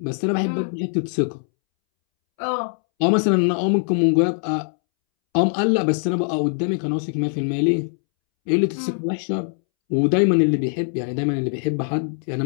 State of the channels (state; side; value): silent; right; 65 dB below the other